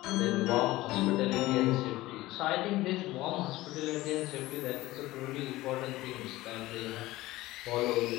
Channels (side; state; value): right; quieter; 18.0 dB